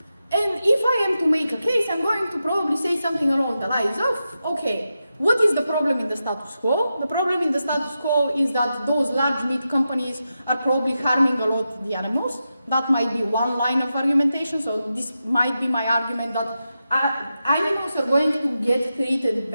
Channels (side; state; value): both; inverted; correlation -0.89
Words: it. And if I am to make a case, I'm going to probably say something along the lines of, okay, what is the problem in the status quo? The problem in the status quo is that those large meat companies are probably harming a lot the animals. That might be one line of argumentation, so this might be my argument that animals are going to get treated